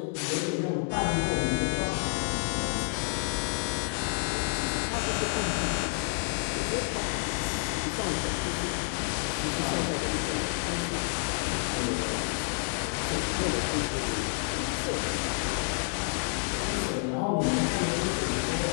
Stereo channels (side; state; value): right; silent; 58 dB below the other